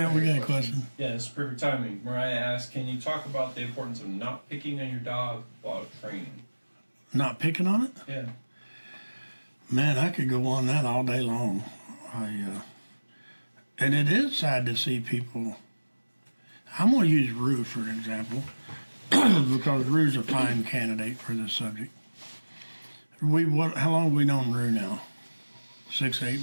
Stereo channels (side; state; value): both; inverted; correlation -1.00